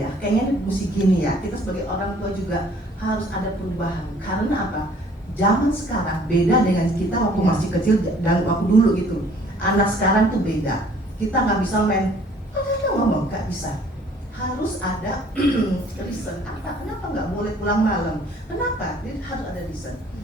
kayaknya mesti gini ya. Kita sebagai orang tua juga harus ada perubahan. Karena apa? Zaman sekarang beda dengan kita waktu masih kecil dan waktu dulu gitu. Anak sekarang tuh beda. Kita nggak bisa main ngomong, nggak bisa. Harus ada reason. Apa? Kenapa nggak boleh pulang malam? Kenapa? Jadi harus ada reason.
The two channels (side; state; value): both; normal; correlation 0.57